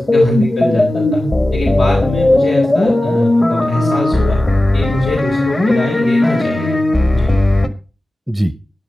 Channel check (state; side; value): normal; both; correlation 0.95